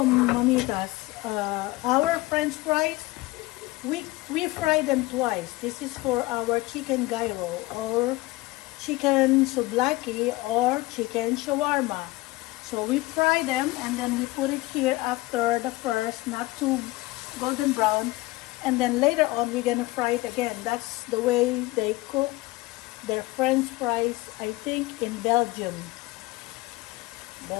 mamitas. Our French fries, we fry them twice. This is for our chicken gyro or chicken souvlaki or chicken shawarma. So we fry them and then we put it here after the first, not too golden brown. And then later on we're gonna fry it again. That's the way they cook their French fries, I think, in Belgium,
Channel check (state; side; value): quieter; right; 20.8 dB